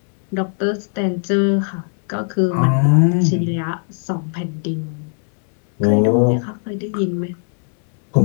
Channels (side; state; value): right; silent; 63 dB below the other